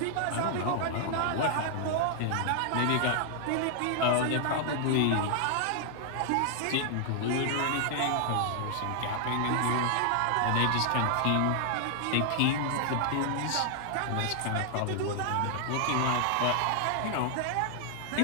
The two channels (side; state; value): both; different; correlation 0.00